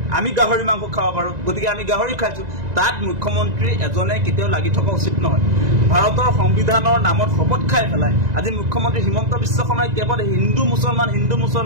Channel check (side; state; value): left; late; 1.9 ms